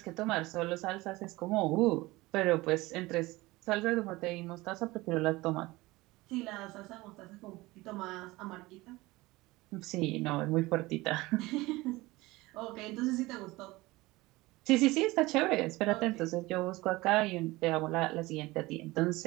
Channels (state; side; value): quieter; left; 20.5 dB